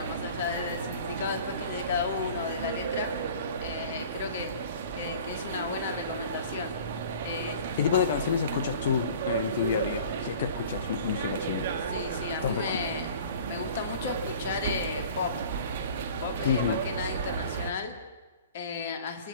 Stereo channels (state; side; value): inverted; both; correlation -0.45